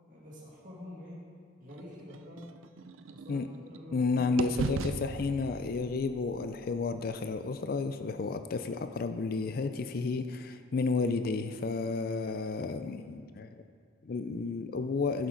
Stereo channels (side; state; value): right; quieter; 3.2 dB